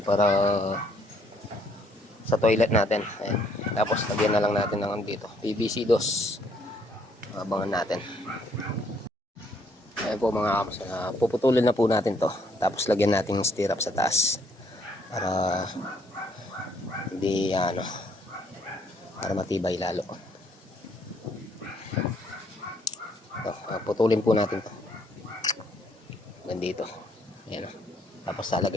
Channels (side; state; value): both; normal; correlation 0.67